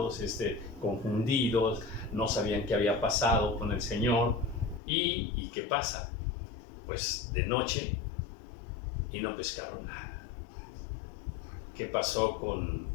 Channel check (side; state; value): right; drops out; at 4.8 s